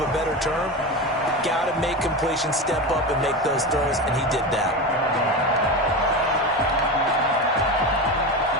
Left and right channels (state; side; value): normal; both; correlation 0.22